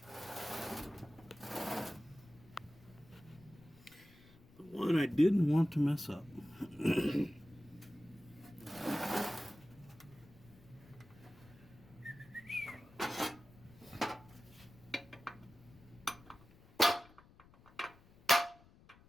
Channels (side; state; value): left; noise; rumble, 24 dB below the sound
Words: The one I didn't want to mess up.